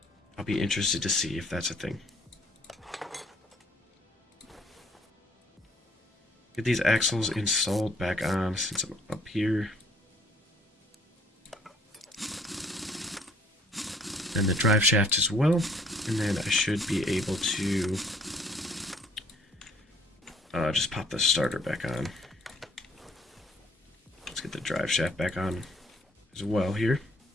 I'll be interested to see if that's a thing. Get these axles installed back on since I'm up here. And the drive shaft as well. And then I should be able to just pop the starter back on. Let's get the drive shaft back on as well here.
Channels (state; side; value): normal; both; correlation 0.60